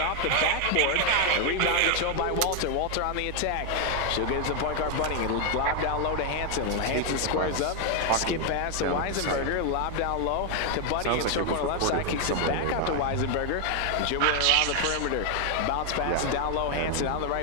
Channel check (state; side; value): different; both; correlation 0.01